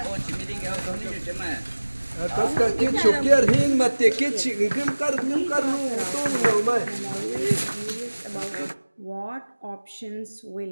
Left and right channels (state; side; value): inverted; both; correlation -1.00